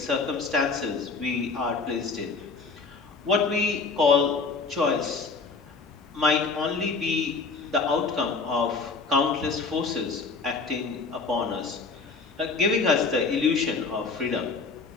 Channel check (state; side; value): quieter; right; 4.4 dB